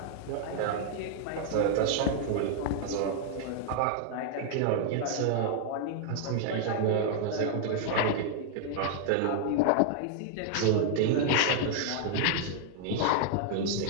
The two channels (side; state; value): both; different; correlation 0.00